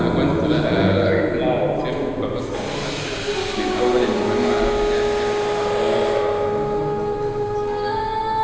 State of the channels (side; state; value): both; identical; correlation 1.00